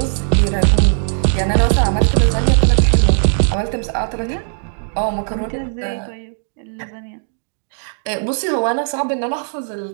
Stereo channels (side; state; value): left; silent; digital silence